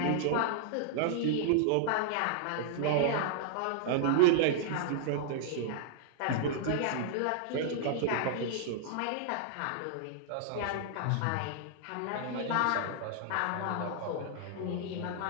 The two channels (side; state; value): both; different; correlation -0.01